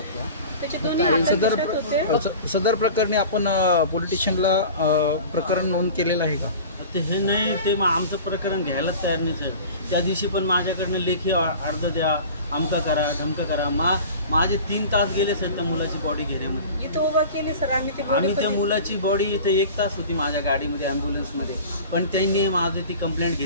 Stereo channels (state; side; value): inverted; both; correlation -0.38